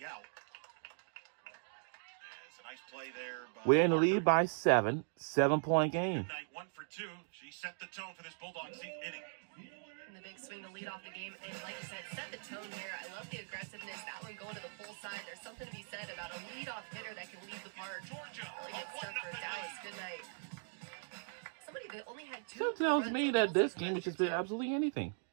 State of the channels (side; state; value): left; silent; digital silence